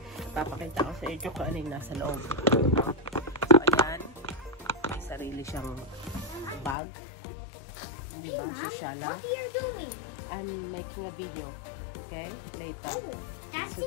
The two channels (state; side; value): drops out; right; at 6.8 s